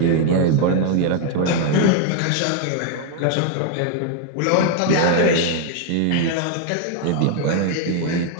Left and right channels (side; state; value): both; different; correlation 0.00